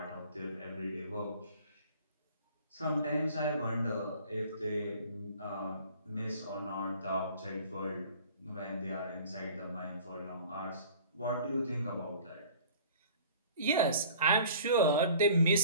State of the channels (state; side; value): inverted; both; correlation -0.48